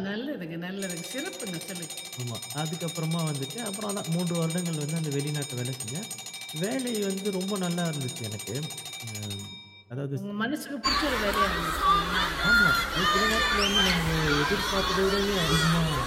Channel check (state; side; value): identical; both; correlation 1.00